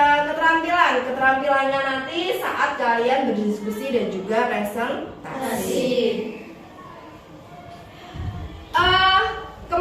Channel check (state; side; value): identical; both; correlation 1.00